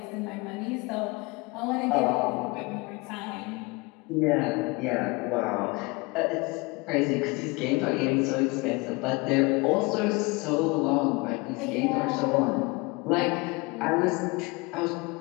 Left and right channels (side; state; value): right; quieter; 26.2 dB